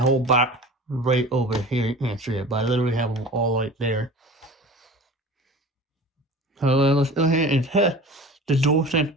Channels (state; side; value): normal; both; correlation 0.38